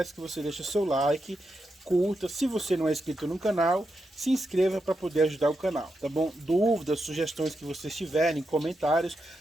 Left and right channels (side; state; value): both; normal; correlation 0.86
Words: que você deixe seu like, curta. Se você não é inscrito no canal, se inscreva para poder ajudar o canal, tá bom? Dúvidas, sugestões que vocês tiverem, comentários,